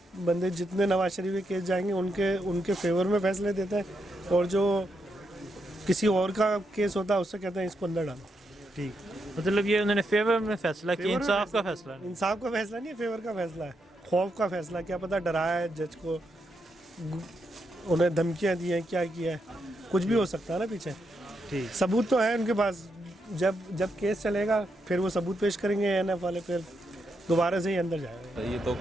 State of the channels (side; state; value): both; normal; correlation 0.82